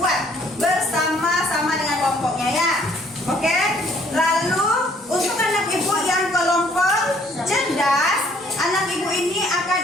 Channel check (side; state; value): both; normal; correlation 0.62